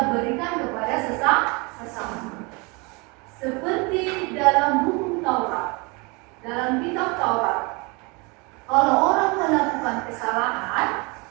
berikan kepada sesama. Seperti dalam hukum Taurat, dalam kitab Taurat, kalau orang melakukan kesalahan,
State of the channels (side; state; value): left; quieter; 28.7 dB